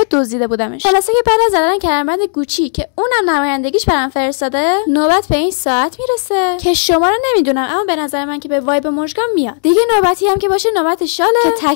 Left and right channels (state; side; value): silent; right; digital silence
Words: دزدیده بودمش. خلاصه که بعد از زدن کمربند گوچی که اونم نمایندگیش برام فرستاده، نوبت به این ساعت میرسه که شما رو نمیدونم، اما به نظر من که به وایب مژگان میاد. دیگه نوبتی هم که باشه نوبت شاله که